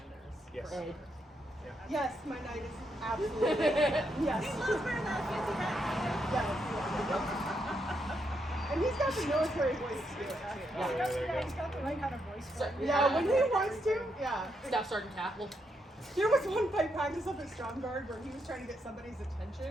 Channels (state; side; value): normal; both; correlation 0.79